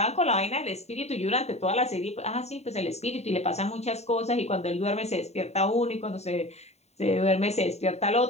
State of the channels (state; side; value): late; right; 0.32 ms